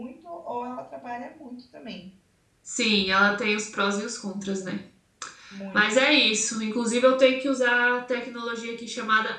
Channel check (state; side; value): identical; both; correlation 1.00